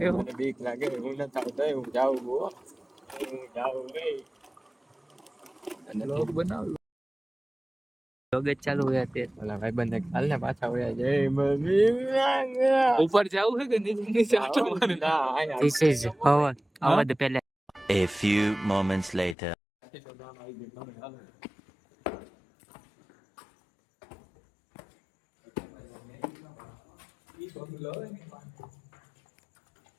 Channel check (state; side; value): drops out; right; at 19.4 s